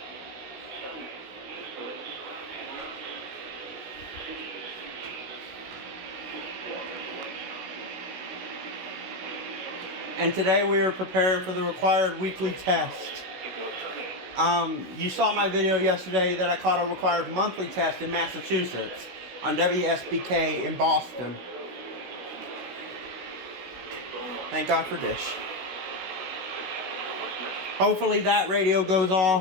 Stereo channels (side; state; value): left; late; 16 ms